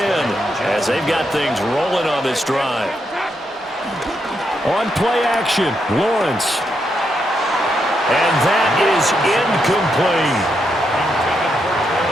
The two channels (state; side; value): normal; both; correlation 0.81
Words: as they've got things rolling on this drive. On play action, Lawrence. And that is incomplete.